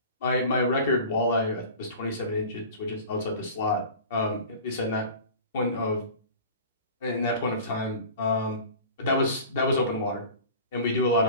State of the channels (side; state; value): both; inverted; correlation -0.39